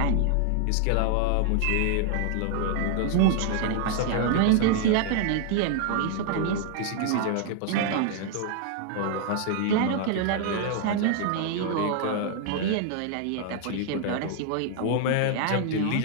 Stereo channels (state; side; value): different; both; correlation 0.00